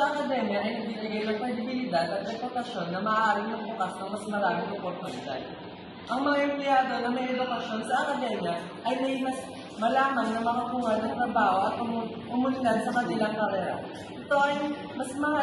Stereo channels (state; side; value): identical; both; correlation 1.00